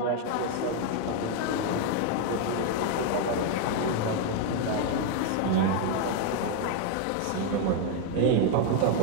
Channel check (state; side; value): different; both; correlation 0.01